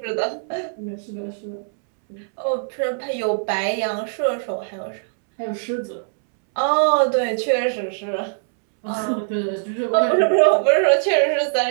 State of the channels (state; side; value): silent; left; 64 dB below the other